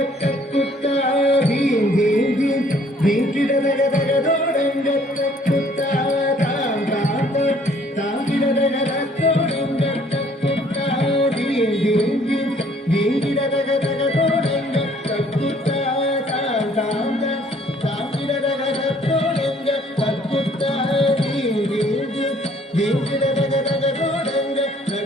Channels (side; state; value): both; normal; correlation 0.60